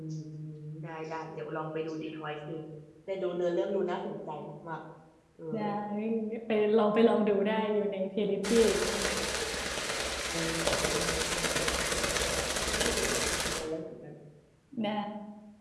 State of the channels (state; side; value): identical; both; correlation 1.00